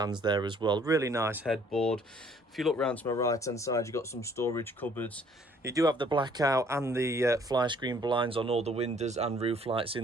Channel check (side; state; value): both; normal; correlation 0.60